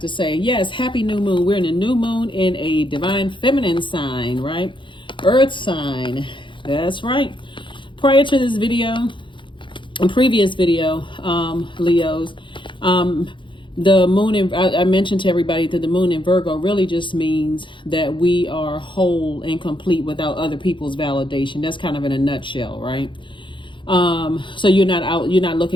say. Yes, happy new moon. We're in a new moon in a divine feminine sign, right? Earth sign. That's right. Prior to this video, in previous video, Leos, the moon in, I mentioned to everybody that the moon in Virgo really just means that we are whole and complete without other people's validation. That's kind of in a nutshell, right? So you're not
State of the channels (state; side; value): late; right; 0.24 ms